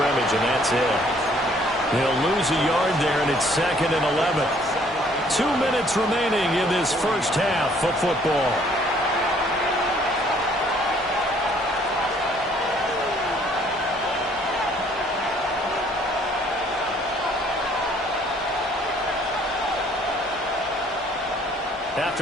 and that's it. He'll lose a yard there, and it's 2nd and 11. 2 minutes remaining in this first half of football.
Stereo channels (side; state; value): both; normal; correlation 0.61